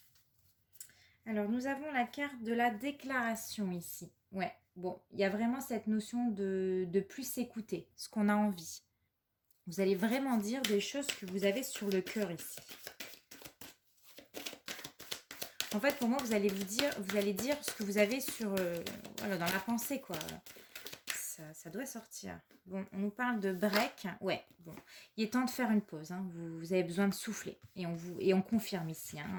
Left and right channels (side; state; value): both; identical; correlation 1.00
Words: Alors, nous avons la carte de la déclaration ici. Ouais, bon, il y a vraiment cette notion de plus s'écouter, ce qu'on a envie. Vous allez vraiment dire des choses que vous avez sur le cœur ici. En fait, pour moi, vous allez dire ce que vous avez sur, voilà, dans la pensée, quoi. Ça doit sortir. Bon, on nous parle de break. Ouais, bon, il est temps de faire une pause. Hein. Vous avez besoin de souffler. Et on confirme ici,